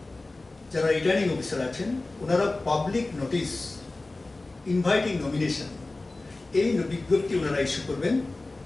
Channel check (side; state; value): right; quieter; 3.1 dB